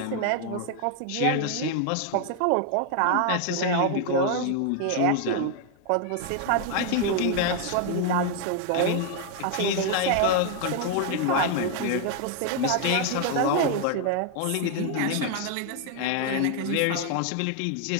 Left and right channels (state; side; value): different; both; correlation 0.00